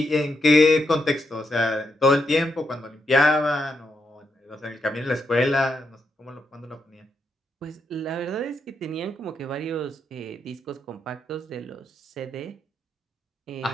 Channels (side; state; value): both; normal; correlation 0.81